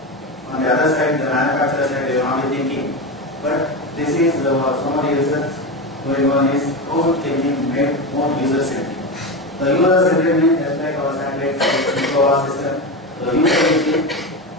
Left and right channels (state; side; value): normal; both; correlation 0.19